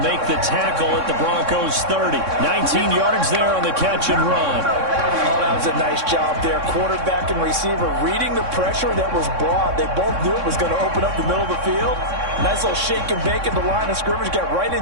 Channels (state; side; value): late; left; 3.6 ms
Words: the tackle at the Broncos 30. 19 yards there on the catch and run. Oh, that was a nice job there. Quarterback and receiver reading the pressure that was brought. They both knew it was going to open up the middle of the field. Nice little shake and bake at the line of scrimmage, got right